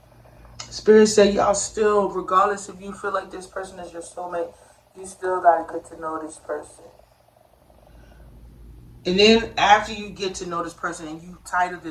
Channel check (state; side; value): identical; both; correlation 1.00